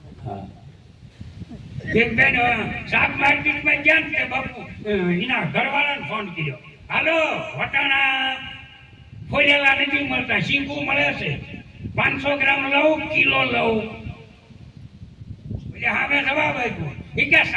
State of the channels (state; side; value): identical; both; correlation 1.00